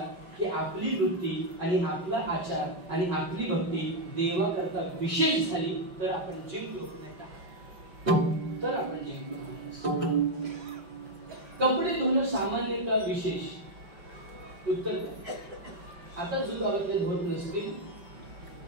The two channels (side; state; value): left; late; 5.6 ms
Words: की आपली वृत्ती आणि आपला आचार आणि आपली भक्ती देवाकरता विशेष झाली तर आपण जिंकलो, नाही का? तर आपण जिंकलो. कपडे धुणं सामान्य का विशेष? उत्तर द्या. आता जो गावातले धुवत नसतील